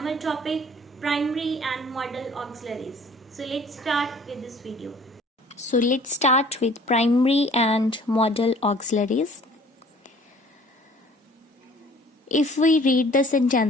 topic primary and modal auxiliaries. So let's start with this video. So let's start with primary and modal auxiliaries. If we read the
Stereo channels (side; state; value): both; normal; correlation 0.52